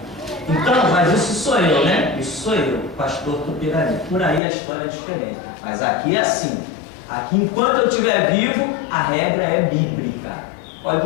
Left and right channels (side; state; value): right; drops out; at 4.4 s